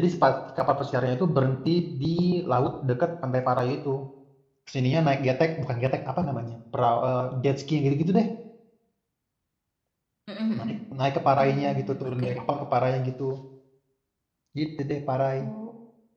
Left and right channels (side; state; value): both; identical; correlation 1.00